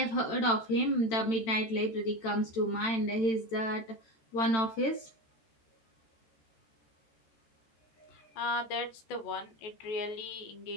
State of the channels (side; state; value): right; late; 13 ms